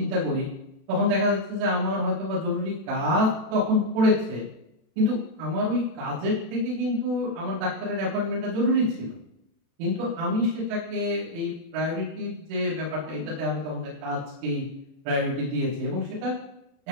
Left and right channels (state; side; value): late; left; 36 ms